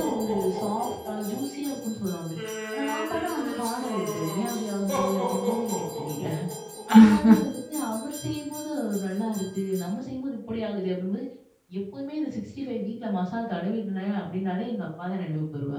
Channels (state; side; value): identical; both; correlation 1.00